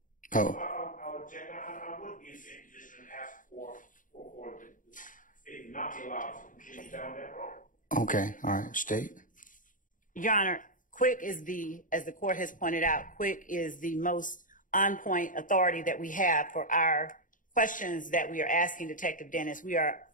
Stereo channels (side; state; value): right; late; 0.38 ms